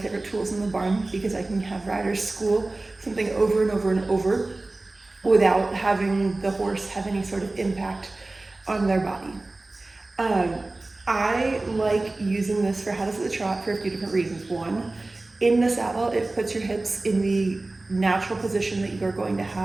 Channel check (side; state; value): left; quieter; 3.0 dB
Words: tools in the barn because I can have riders school something over and over and over without having the horse have any sort of impact on their body. I like using this for how to sit the trot for a few different reasons. One, in the saddle, it puts your hips in the natural position that you are going to